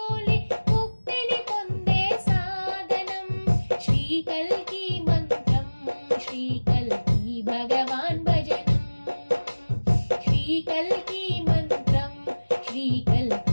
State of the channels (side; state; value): both; inverted; correlation -1.00